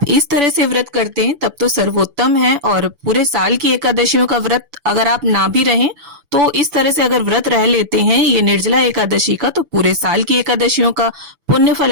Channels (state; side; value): late; left; 6.0 ms